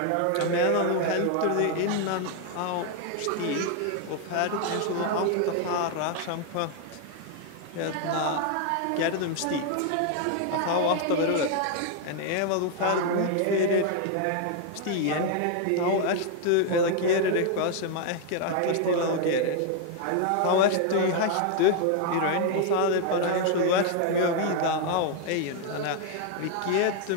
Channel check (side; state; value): both; different; correlation 0.00